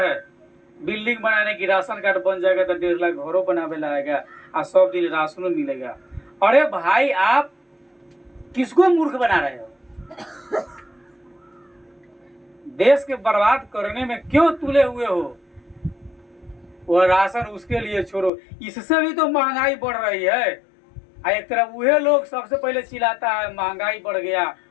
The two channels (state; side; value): drops out; right; at 18.3 s